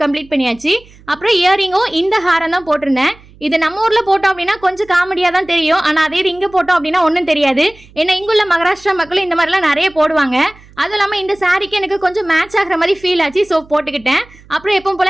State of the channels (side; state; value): right; noise; hum, 25 dB below the sound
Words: கம்ப்ளீட் பண்ணியாச்சு. அப்புறம் இயரிங்கும் இந்த ஹாரம் தான் போட்டிருந்தேன். இது நம்ம ஊர்ல போட்டோம் அப்படின்னா கொஞ்சம் காமெடியா தான் தெரியும். ஆனா அதே இது இங்க போட்டோம் அப்படின்னா ஒன்றும் தெரியாது. ஏன்னா இங்குள்ள மகாராஷ்டிரா மக்களும் இந்த மாதிரிலாம் நிறைய போடுவாங்க. அதுவும் இல்லாமல் இந்த சாரிக்கு எனக்கு கொஞ்சம் மேட்ச் ஆகிற மாதிரி ஃபீல் ஆச்சு. ஸோ போட்டுக்கிட்டேன். அப்புறம் எப்பவும்